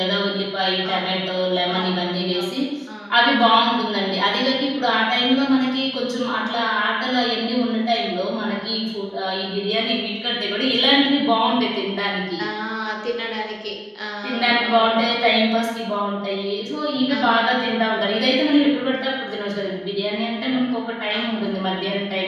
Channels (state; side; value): identical; both; correlation 1.00